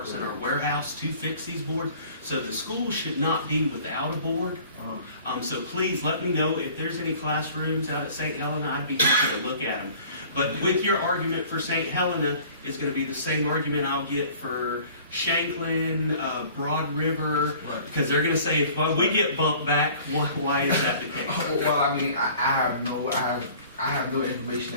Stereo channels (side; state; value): both; inverted; correlation -0.49